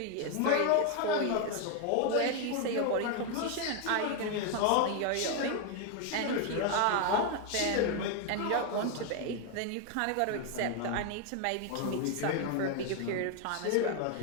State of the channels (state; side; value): different; both; correlation 0.01